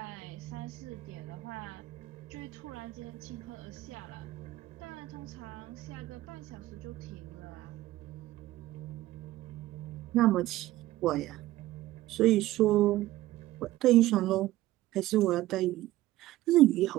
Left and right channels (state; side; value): quieter; left; 16.2 dB